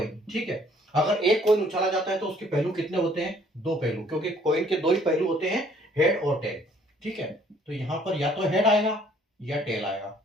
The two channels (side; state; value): both; normal; correlation 0.60